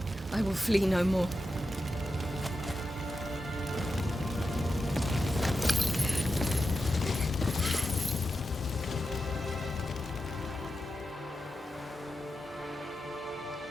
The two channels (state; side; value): normal; both; correlation 0.89